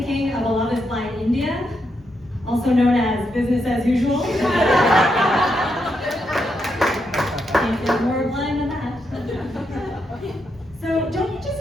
of a Love is Blind India, also known as business as usual. Can't get more blind than that. So don't you just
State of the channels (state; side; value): normal; both; correlation 0.82